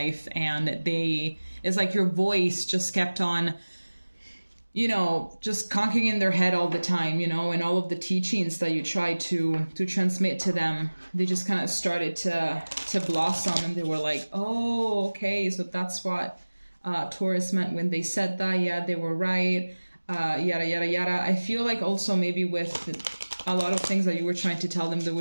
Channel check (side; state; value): both; inverted; correlation -1.00